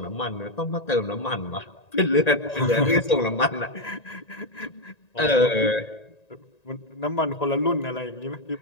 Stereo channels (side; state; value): right; late; 1.9 ms